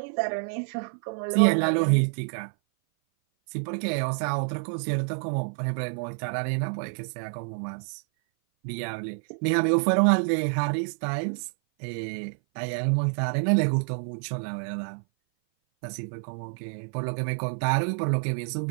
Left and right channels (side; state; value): left; silent; 57 dB below the other